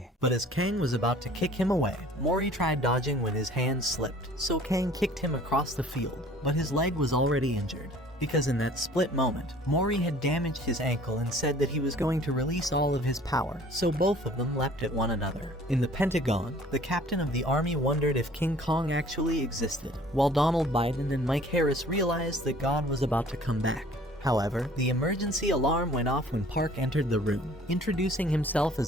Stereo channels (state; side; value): normal; both; correlation 0.52